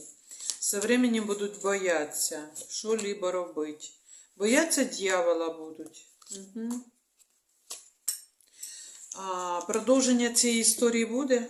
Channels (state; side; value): identical; both; correlation 1.00